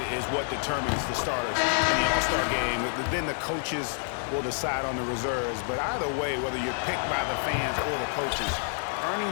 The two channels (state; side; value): silent; right; 59 dB below the other